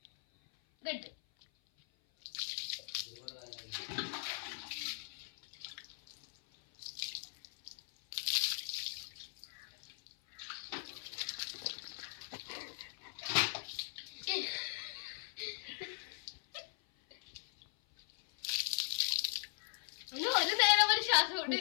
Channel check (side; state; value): right; silent; 51 dB below the other